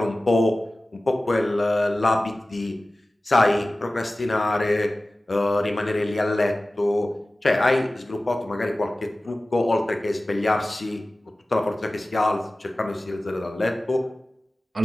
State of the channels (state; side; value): normal; both; correlation 0.97